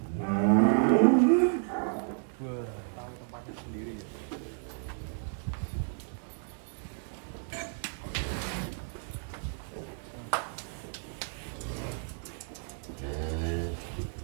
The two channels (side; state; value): left; silent; 56 dB below the other